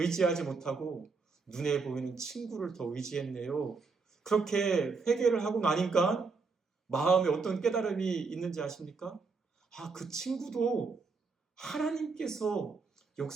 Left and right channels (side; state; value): left; quieter; 4.5 dB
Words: 못하고 눈에 보이는 친구를 더 의지했네요. 그렇게 회개를 하고 나니까 마음에 어떤 깨달음이 있는지 아십니까? 아, 그 친구도 하나님께서